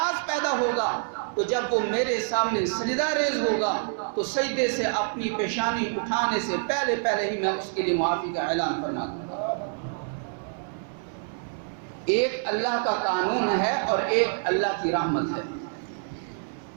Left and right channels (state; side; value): silent; left; 60 dB below the other